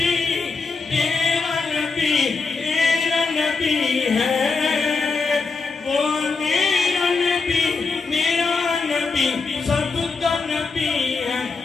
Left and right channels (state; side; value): quieter; right; 4.4 dB